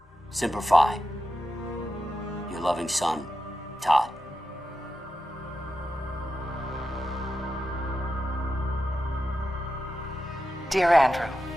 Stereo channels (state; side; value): normal; both; correlation 0.89